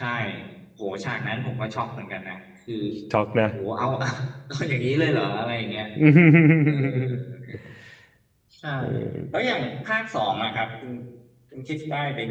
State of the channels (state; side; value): identical; both; correlation 1.00